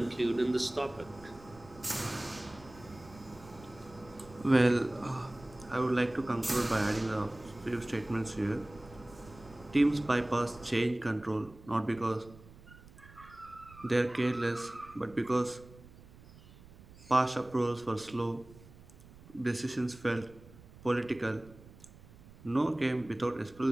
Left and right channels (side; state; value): right; noise; rumble, 21 dB below the sound